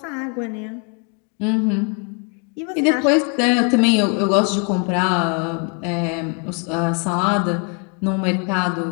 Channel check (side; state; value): right; quieter; 37.0 dB